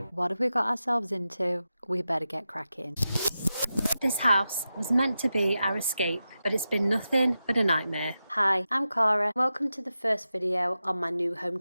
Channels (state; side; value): inverted; both; correlation -0.91